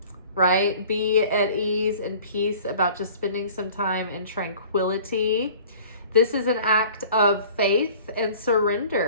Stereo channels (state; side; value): inverted; both; correlation -0.47